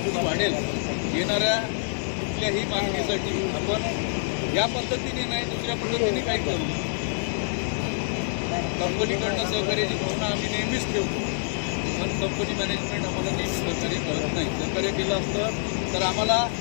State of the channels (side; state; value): right; silent; digital silence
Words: वाढेल. येणाऱ्या कुठल्याही मागणीसाठी आपण या पद्धतीने नाही, दुसऱ्या पद्धतीने काही करू. कंपनीकडनं सहकार्याची भावना आम्ही नेहमीच ठेवतो, पण कंपनी मॅनेजमेंट आम्हाला नेहमी सहकार्य करत नाही. सहकार्य केलं असतं तर आम्हाला